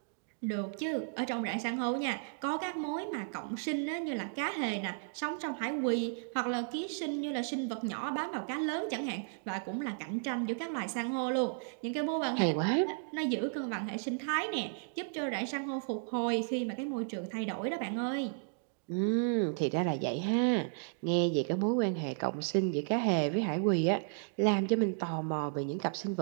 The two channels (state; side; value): silent; left; digital silence